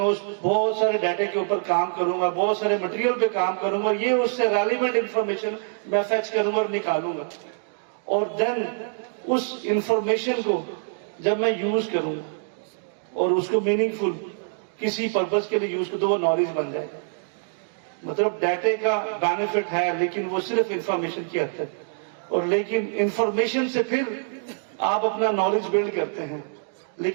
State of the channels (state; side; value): silent; left; digital silence